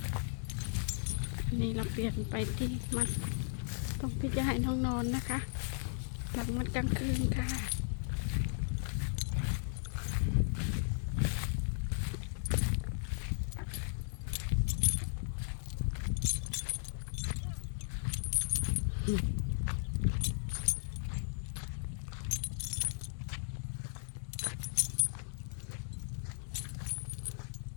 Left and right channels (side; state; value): right; silent; digital silence